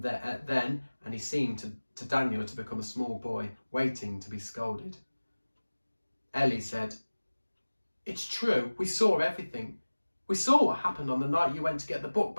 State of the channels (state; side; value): inverted; both; correlation -1.00